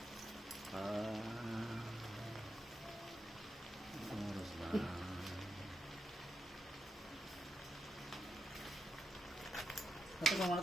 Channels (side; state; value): both; normal; correlation 0.85